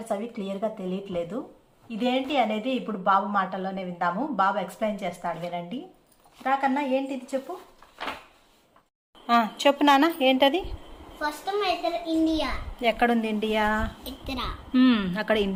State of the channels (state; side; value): identical; both; correlation 1.00